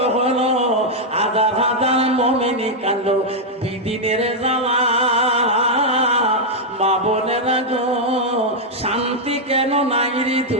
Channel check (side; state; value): both; normal; correlation -0.01